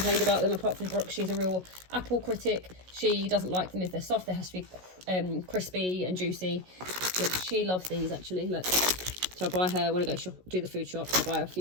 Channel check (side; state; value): left; late; 16 ms